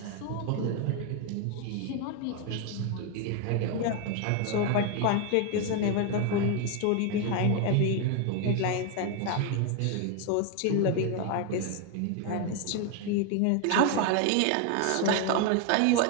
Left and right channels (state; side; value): different; both; correlation 0.01